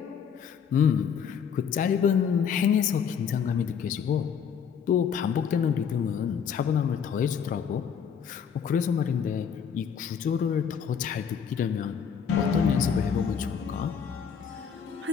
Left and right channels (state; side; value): quieter; right; 7.3 dB